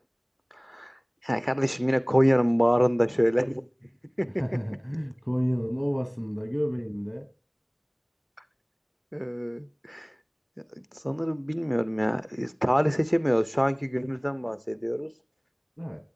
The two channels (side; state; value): both; identical; correlation 1.00